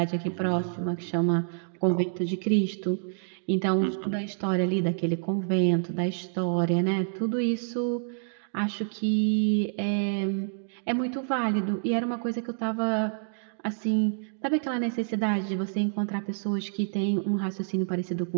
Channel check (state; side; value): silent; left; digital silence